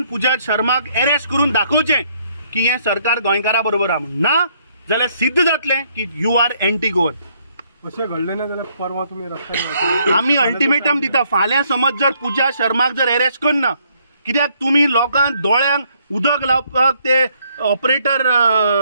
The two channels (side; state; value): both; inverted; correlation -0.69